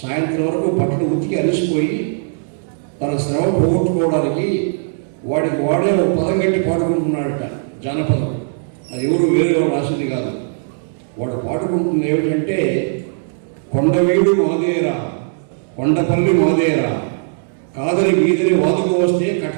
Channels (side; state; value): left; silent; digital silence